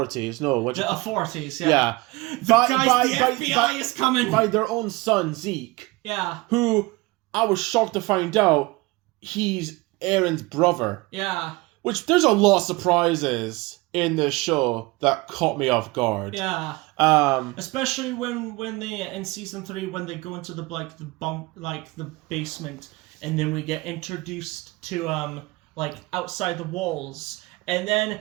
No, the authorities. Yeah. Yeah. The FBI is coming. By their own son Zeke. Yeah. Who I was shocked to find out he's Aaron's brother. Yeah. Which there's a lot of surprises in this show that caught me off guard. Yeah. Especially when they in season 3 when they go into the basement, and then we get introduced to outside the walls, and then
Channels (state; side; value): quieter; left; 22.8 dB